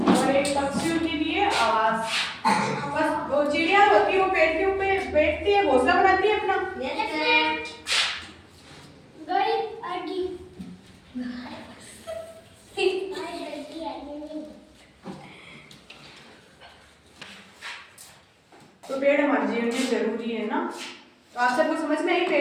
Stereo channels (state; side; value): identical; both; correlation 1.00